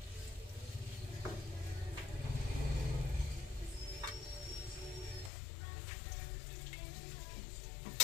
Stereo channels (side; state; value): right; drops out; at 5.3 s